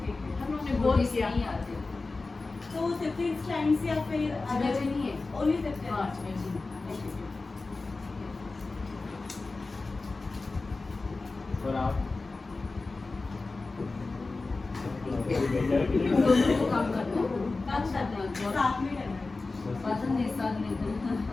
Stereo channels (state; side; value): quieter; right; 3.6 dB